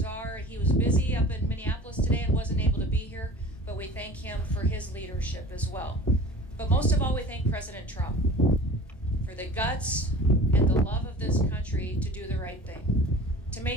He was busy up in Minneapolis today and wasn't able to be here, but we thank him for his leadership as well. But most of all, we thank President Trump for the guts and the love of this country to do the right thing. To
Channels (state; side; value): normal; both; correlation 0.41